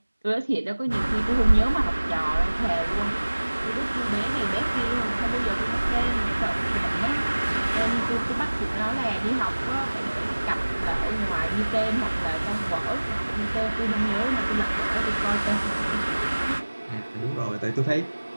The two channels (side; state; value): both; inverted; correlation -1.00